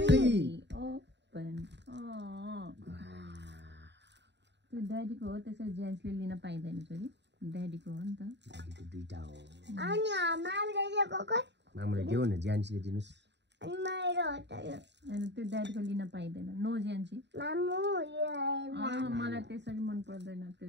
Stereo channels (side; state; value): left; late; 0.51 ms